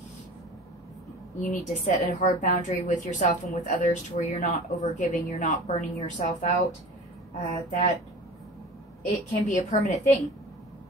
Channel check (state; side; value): normal; both; correlation 0.38